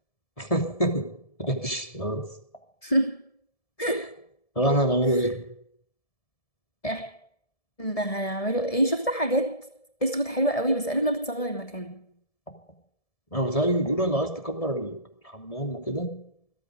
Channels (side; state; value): right; late; 1.7 ms